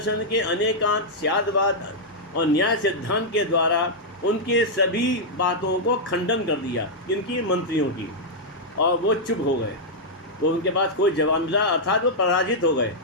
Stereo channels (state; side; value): normal; both; correlation -0.06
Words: के अनेकांत स्यादवाद और न्याय सिद्धांत के द्वारा उनके सभी बातों को खंडन कर दिया, इनकी मंत्रियों की, और वो चुप हो गए। वो उनके पास कोई जवाब मिला, अर्थात वो पराजित हो गए।